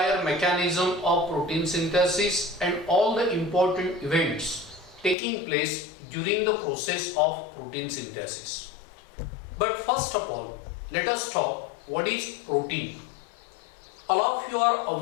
mechanism of protein synthesis and all the important events taking place during the process of protein synthesis. But first of all, let us talk what is protein. All of you are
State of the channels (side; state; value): right; drops out; at 5.2 s